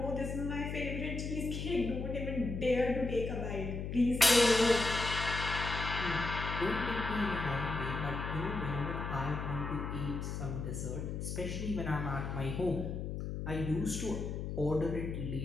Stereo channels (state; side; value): noise; left; hum, 4 dB below the sound